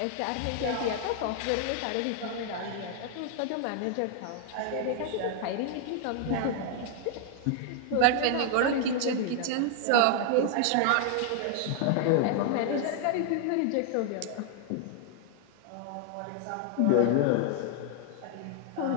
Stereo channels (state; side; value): different; both; correlation 0.00